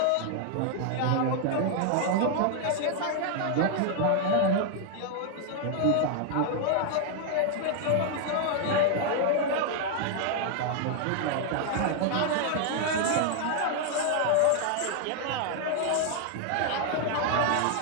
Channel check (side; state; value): both; different; correlation 0.00